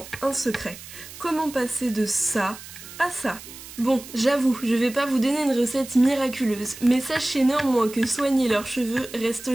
un secret. Comment passer de ça à ça ? Bon, j'avoue, je vais pas vous donner une recette miraculeuse, mais sachez néanmoins que soigner leurs cheveux reste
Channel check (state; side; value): noise; right; hiss, 15 dB below the sound